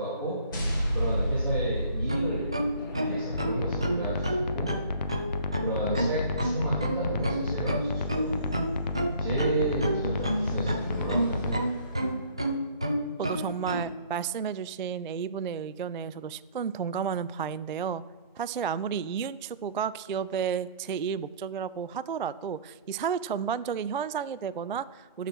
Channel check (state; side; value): inverted; both; correlation -0.53